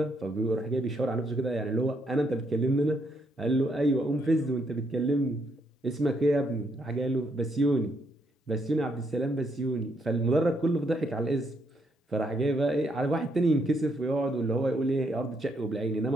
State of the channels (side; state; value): both; normal; correlation 0.75